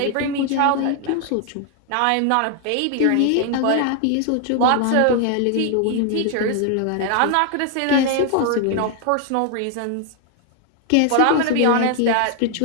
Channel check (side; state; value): both; different; correlation 0.00